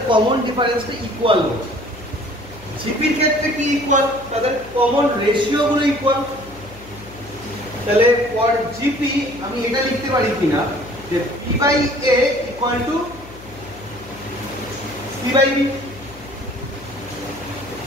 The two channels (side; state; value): left; noise; hum, 18 dB below the sound